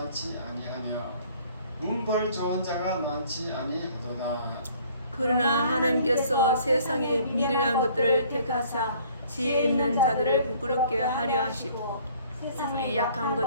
아니하며 문벌 좋은 자가 많지 아니하도다. 그러나 하나님께서 세상의 미련한 것들을 택하사 지혜 있는 자들을 부끄럽게 하려 하시고 세상의 약한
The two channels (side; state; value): both; inverted; correlation -0.56